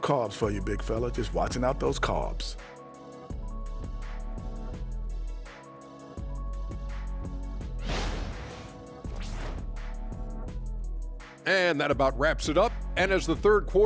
for you, big fella. Just watching out those carbs. And that about wraps it up. And as the third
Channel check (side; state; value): both; identical; correlation 1.00